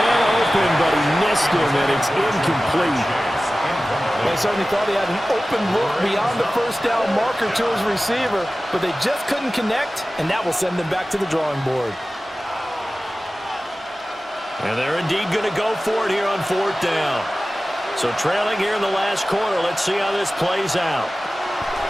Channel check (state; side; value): normal; both; correlation 0.96